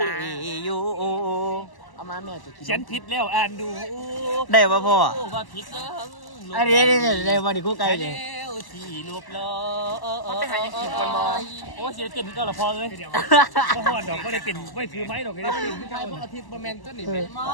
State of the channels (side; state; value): right; late; 1.0 ms